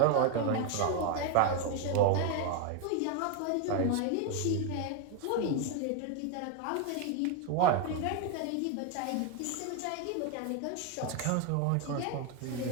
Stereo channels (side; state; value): both; different; correlation 0.01